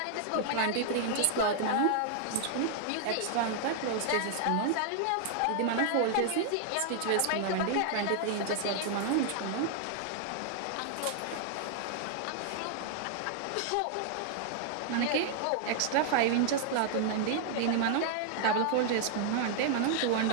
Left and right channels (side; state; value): both; different; correlation -0.01